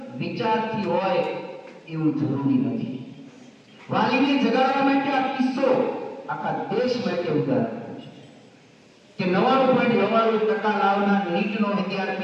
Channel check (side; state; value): both; identical; correlation 1.00